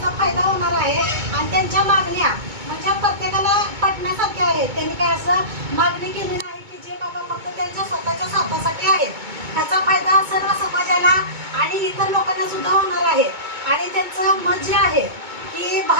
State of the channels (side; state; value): left; late; 2.2 ms